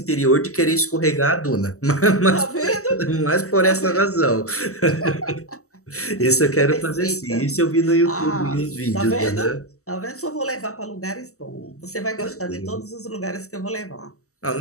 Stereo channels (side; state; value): right; late; 0.64 ms